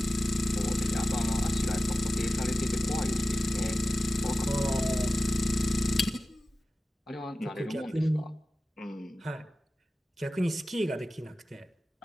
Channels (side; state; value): both; normal; correlation 0.95